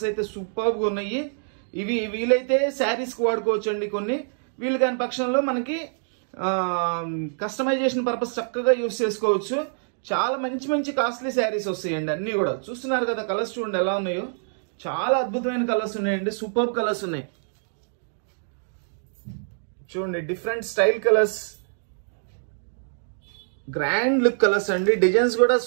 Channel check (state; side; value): silent; left; digital silence